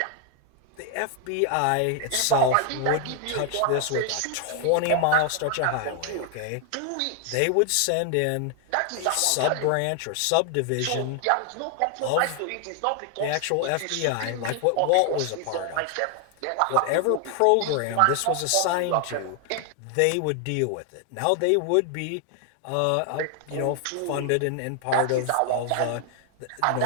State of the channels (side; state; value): both; different; correlation 0.00